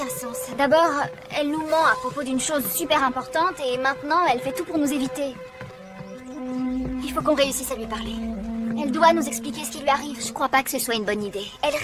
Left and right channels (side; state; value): both; identical; correlation 1.00